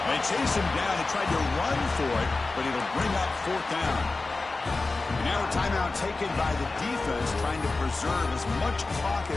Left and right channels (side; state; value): right; quieter; 3.5 dB